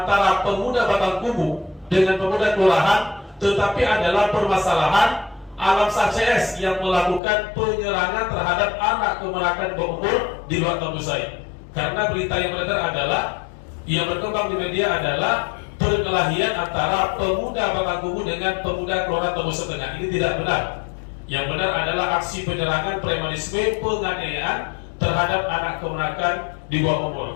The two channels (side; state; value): right; drops out; at 7.2 s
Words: pemuda Batang Kubu dengan pemuda kelurahan, tetapi adalah permasalahan alam sah CS yang melakukan penyerangan terhadap anak kemenakan berumur di luar Tambusai. Karena berita yang beredar adalah, yang berkembang di media adalah perkelahian antara pemuda Batang Kubu dengan pemuda kelurahan Tambusai Tengah. Ini tidak benar. Yang benar adalah aksi penyerangan, premanisme, penganiayaan terhadap anak kemenakan di bawah